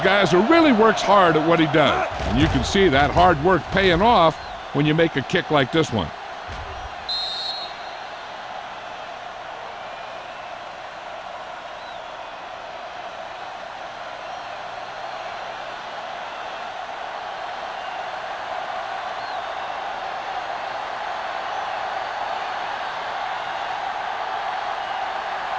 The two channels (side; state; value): both; identical; correlation 1.00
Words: who really works hard at what he does. And you can see that hard work paying off when you make a kick like this one.